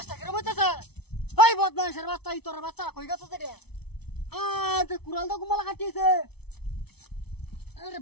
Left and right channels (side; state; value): right; late; 0.98 ms